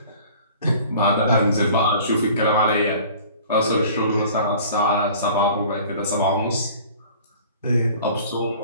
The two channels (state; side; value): inverted; both; correlation -0.47